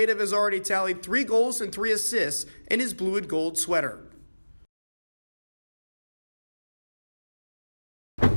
has already tallied 3 goals and 3 assists in his blue and gold sweater.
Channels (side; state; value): both; inverted; correlation -1.00